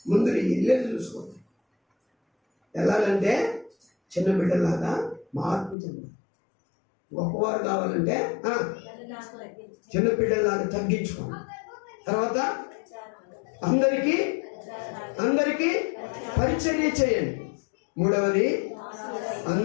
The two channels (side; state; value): right; drops out; at 5.8 s